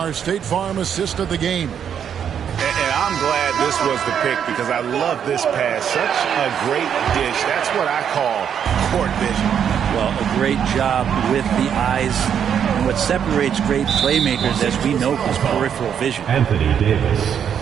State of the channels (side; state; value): left; quieter; 8.4 dB